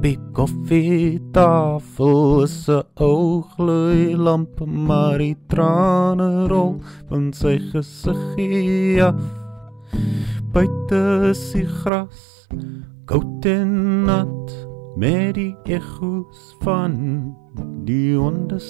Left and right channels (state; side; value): drops out; left; at 11.9 s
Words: die koffietafel is 'n ou gloeilamp, maar die trane rol van sy gesiggie af. Buite is die gras koud en nat, met die echo's van die honde